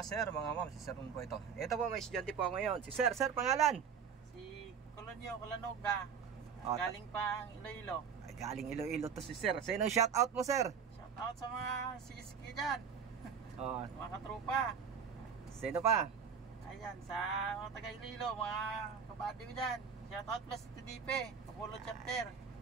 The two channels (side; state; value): left; quieter; 6.8 dB